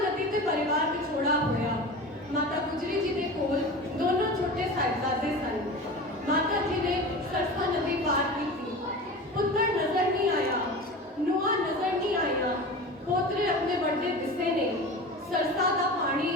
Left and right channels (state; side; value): normal; both; correlation 0.32